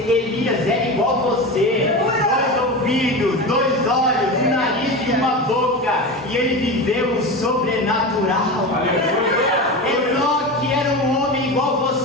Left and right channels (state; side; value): normal; both; correlation 0.25